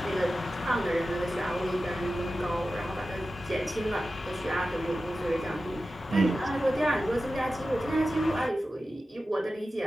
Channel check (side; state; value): both; normal; correlation 0.94